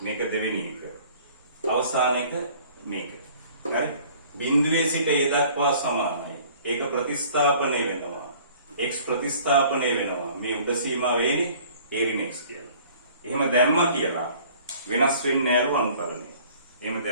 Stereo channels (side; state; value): both; inverted; correlation -0.52